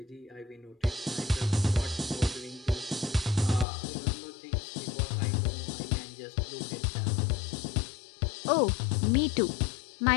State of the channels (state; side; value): drops out; right; at 3.7 s